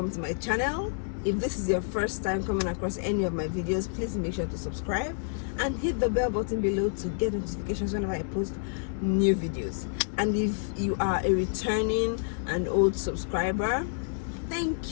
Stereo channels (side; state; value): right; silent; 59 dB below the other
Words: to my channel. If this is your first time coming across any of my videos, please make sure to subscribe and hit the bell button below to get notifications whenever I post new videos. And if you are a returning and old subscriber,